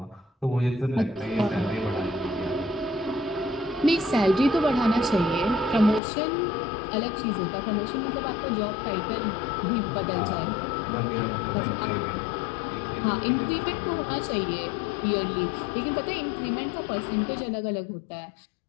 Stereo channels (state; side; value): drops out; right; at 6.0 s